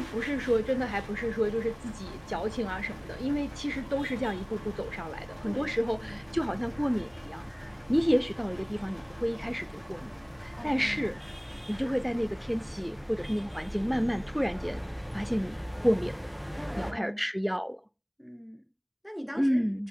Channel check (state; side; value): identical; both; correlation 1.00